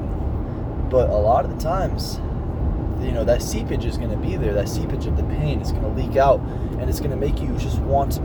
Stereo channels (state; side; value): identical; both; correlation 1.00